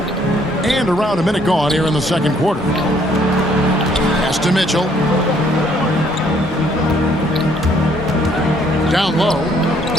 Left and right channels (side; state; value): both; normal; correlation 0.65